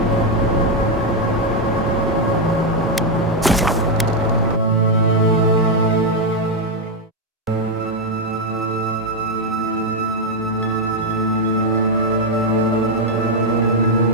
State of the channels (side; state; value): both; normal; correlation 0.02